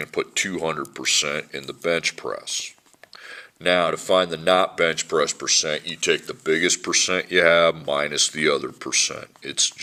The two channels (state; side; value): identical; both; correlation 1.00